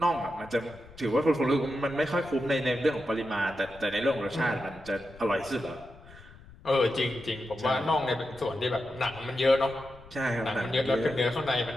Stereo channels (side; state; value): left; noise; rumble, 21 dB below the sound